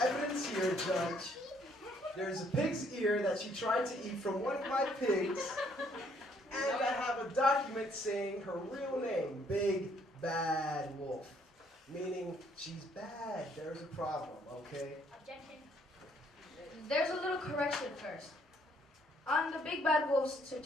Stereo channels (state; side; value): normal; both; correlation 0.66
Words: here, Judge. There's a pig's ear that she tried to eat from one of my pigs, and I have a document saying her real name, Big Bad Wolf, meaning she's bad. There's a problem, okay? Objection. There's a little correction first. On the Big Bad Wolf's